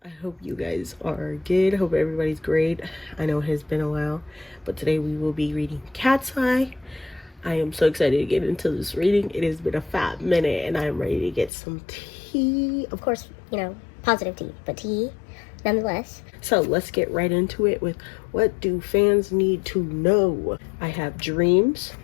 I hope you guys are good. Hope everybody's great. I know it has been a while, but today we will be reading Katseye. I am so excited to get into this reading. It has been a fat minute and I'm ready to get some tea. Of course, positive tea, but tea nonetheless. So let's get right into it with what do fans need to know? I have dreams,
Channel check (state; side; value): drops out; right; at 11.5 s